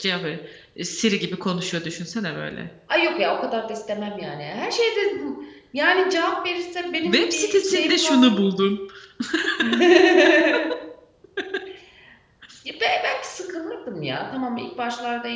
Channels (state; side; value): identical; both; correlation 1.00